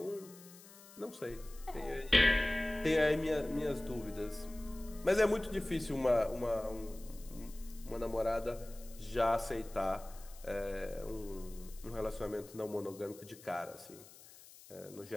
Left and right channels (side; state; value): left; noise; hiss, 20 dB below the sound